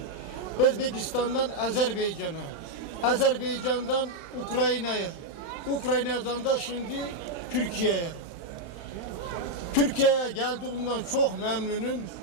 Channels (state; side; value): late; right; 35 ms